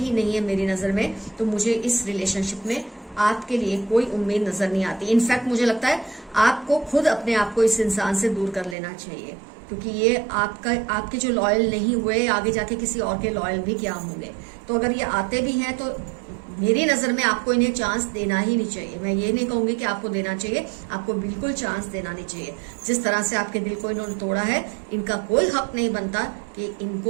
नहीं है मेरी नजर में। तो मुझे इस रिलेशनशिप में आपके लिए कोई उम्मीद नजर नहीं आती। इनफैक्ट मुझे लगता है आपको खुद अपने आप को इस इंसान से दूर कर लेना चाहिए, क्योंकि ये आपके जो लॉयल नहीं हुए आगे जाके किसी और के लॉयल भी क्या होंगे। तो अगर ये आते भी हैं तो मेरी नजर में आपको इन्हें चांस देना ही नहीं चाहिए। मैं ये नहीं कहूंगी कि आपको देना चाहिए, आपको बिल्कुल चांस देना नहीं चाहिए। जिस तरह से आपके दिल को इन्होंने तोड़ा है, इनका कोई हक नहीं बनता कि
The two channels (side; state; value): left; drops out; at 8.8 s